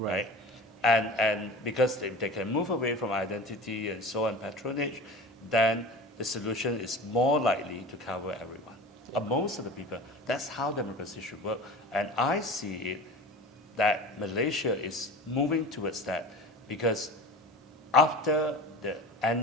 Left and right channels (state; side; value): normal; both; correlation 0.35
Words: And because if they can move away from identity and so on, patronage, then the solution is more likely to cover everyone. Most of the people, that's how democracy should work. And I see it that Malaysia is moving towards that because after the